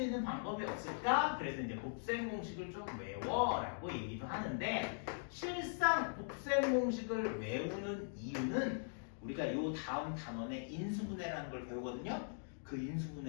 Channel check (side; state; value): right; silent; digital silence